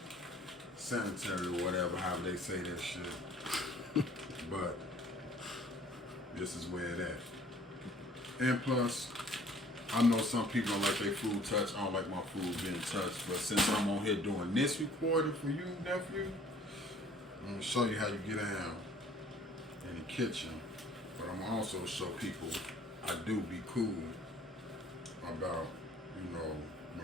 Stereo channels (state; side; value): normal; both; correlation 0.54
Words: sanitary or whatever, however they say that shit. But this is where it at. And plus, I know some people don't like their food touched. I don't like my food being touched. But since I'm on here doing this recording for you, nephew, I'm going to show you how you get down in the kitchen. But I'm going to also show people I do be cool about,